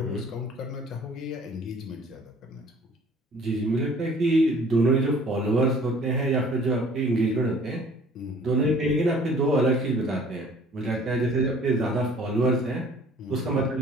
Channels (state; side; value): normal; both; correlation 0.52